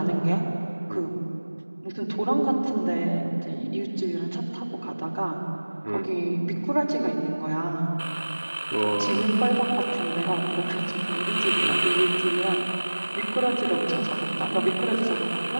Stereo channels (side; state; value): both; inverted; correlation -1.00